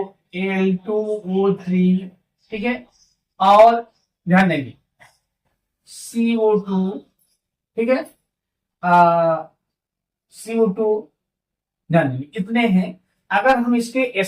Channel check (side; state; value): both; identical; correlation 1.00